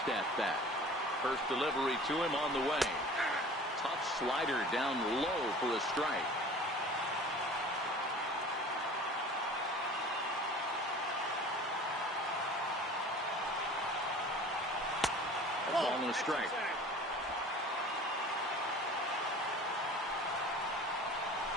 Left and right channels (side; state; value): both; normal; correlation 0.43